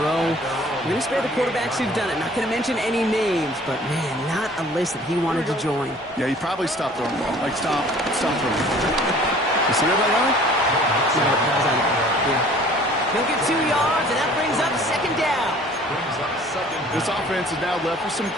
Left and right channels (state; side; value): normal; both; correlation 0.51